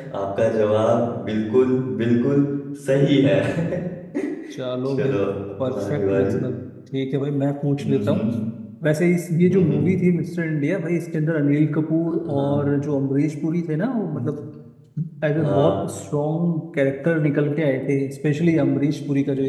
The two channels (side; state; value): both; identical; correlation 1.00